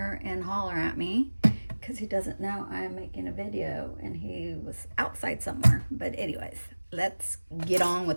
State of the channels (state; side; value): inverted; both; correlation -1.00